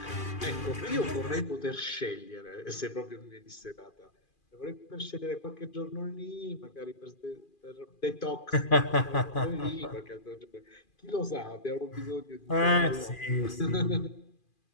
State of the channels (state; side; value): late; right; 2.4 ms